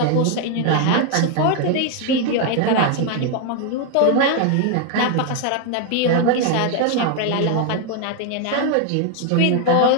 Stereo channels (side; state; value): both; different; correlation 0.00